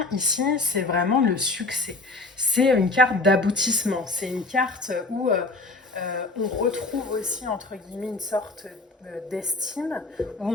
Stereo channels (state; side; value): quieter; right; 3.2 dB